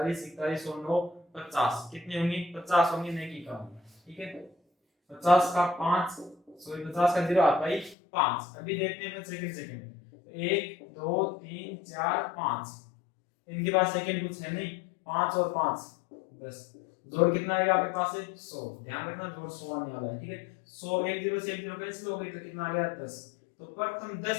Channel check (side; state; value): right; drops out; at 8.0 s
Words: 41 और 9 50, कितने होंगे 50 होंगे, नहीं की कम, ठीक है। 50 का 5 सॉरी 50 का 0 आता है 5। अभी देखते हैं सेकंड 1 2 3 4 5, इनके पास सेकंड कुछ है नहीं, 5 और 5 10, जोड़ कितना आएगा आपके पास है 100, ध्यान रखना जोड़ 100 आने वाला है, ठीक है। 100 एक 0 से 1 0 कैंसिल हो गई तो कितना आ गया 10। तो प्रथम